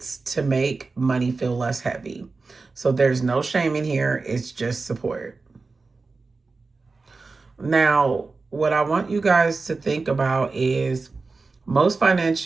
to make money feel less heavy. So, there's no shame in here, it's just support. Now, what I want you guys to think about is most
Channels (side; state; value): left; quieter; 4.0 dB